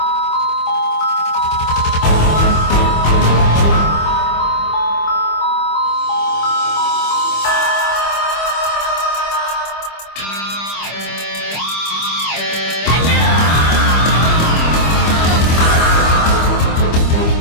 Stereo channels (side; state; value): right; late; 25 ms